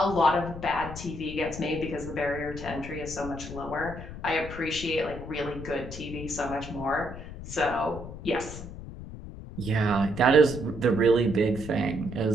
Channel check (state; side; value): noise; left; rumble, 11 dB below the sound